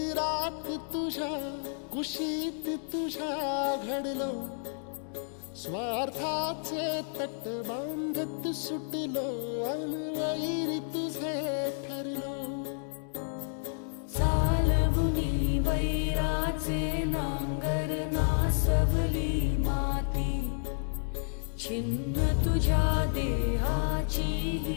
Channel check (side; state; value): right; silent; digital silence